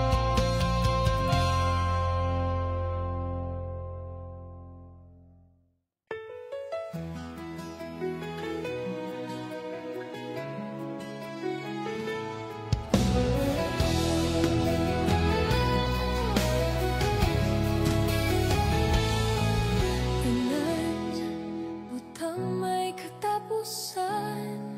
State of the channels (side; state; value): both; identical; correlation 1.00